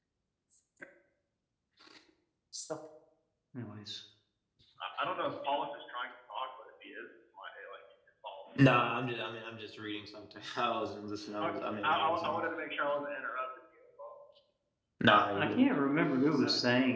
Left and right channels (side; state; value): both; identical; correlation 1.00